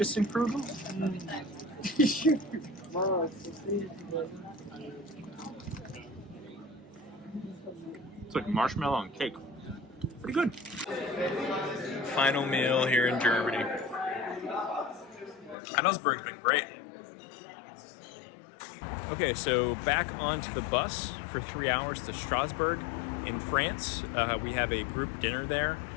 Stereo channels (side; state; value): right; drops out; at 15.6 s